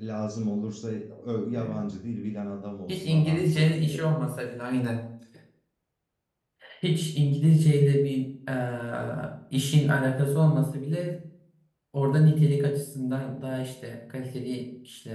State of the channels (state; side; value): identical; both; correlation 1.00